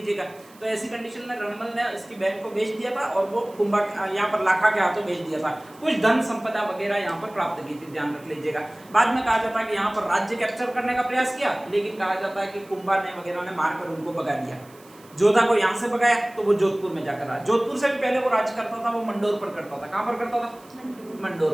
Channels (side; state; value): right; noise; hiss, 26 dB below the sound